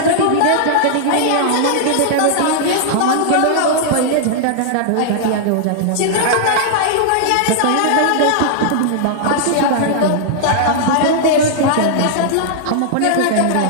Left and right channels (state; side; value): different; both; correlation -0.01